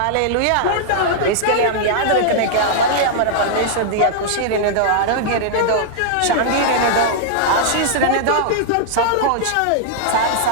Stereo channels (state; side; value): different; both; correlation -0.01